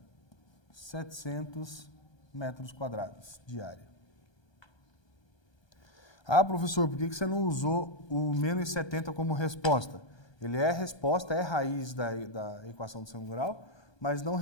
700 metros quadrados de área. Ah, professor, por que você não usou o menos 70 como resposta? Ele é resposta, é raiz da equação do segundo grau, mas não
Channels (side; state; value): right; late; 1.3 ms